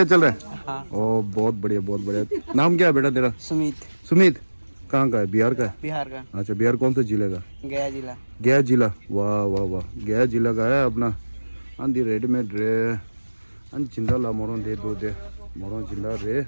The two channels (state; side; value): inverted; both; correlation -1.00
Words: चल रहा है हाँ ओ बहुत बढ़िया नाम क्या है बेटा तेरा सुमित सुमित कहाँ का है? बिहार का है? बिहार का। अच्छा, बिहार कौन से जिले का? गया जिला। गया जिला, वाह वाह वाह, गया जिला का है अपना। अंदी रेडीमेड रे अन चिंदा ला मोरों दे दो दे मोरों चिंदा रे